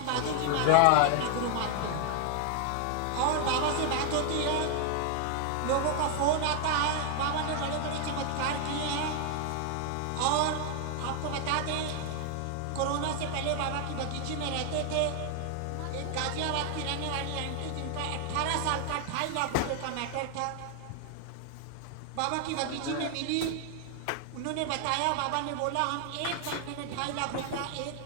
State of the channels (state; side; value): different; both; correlation 0.00